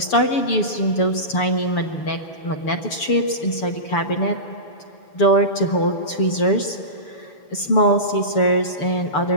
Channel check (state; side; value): late; right; 6.9 ms